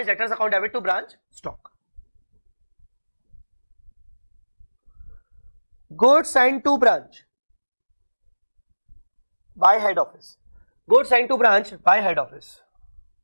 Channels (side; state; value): both; inverted; correlation -1.00